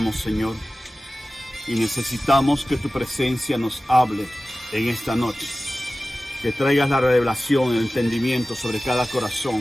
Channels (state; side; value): normal; both; correlation 0.96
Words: Señor, y necesitamos que tu presencia nos hable en esta noche. Que traigas la revelación, el entendimiento sobre cada